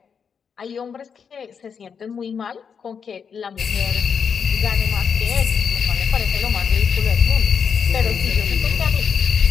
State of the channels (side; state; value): right; quieter; 6.6 dB